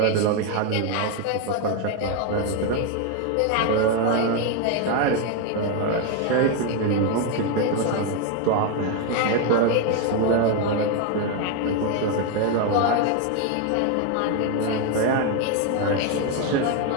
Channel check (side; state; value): both; different; correlation 0.01